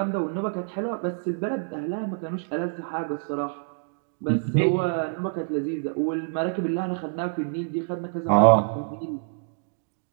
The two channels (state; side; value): silent; left; digital silence